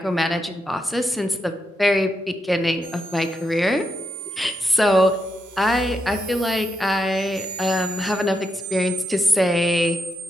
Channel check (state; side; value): normal; both; correlation 0.83